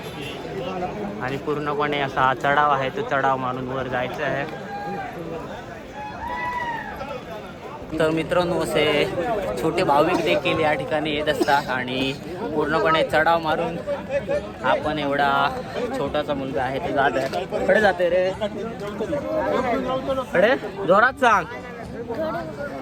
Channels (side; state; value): both; identical; correlation 1.00